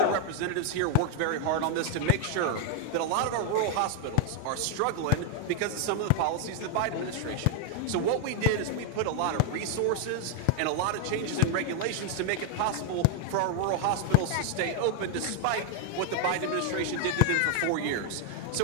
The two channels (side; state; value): both; different; correlation 0.00